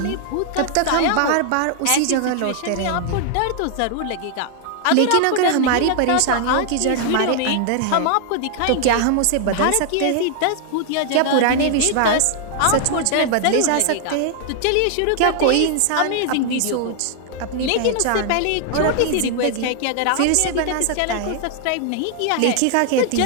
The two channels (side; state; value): both; different; correlation 0.00